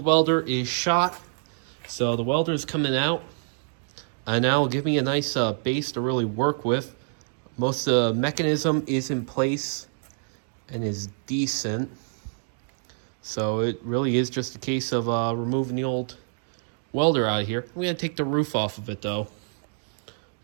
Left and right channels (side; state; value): left; silent; digital silence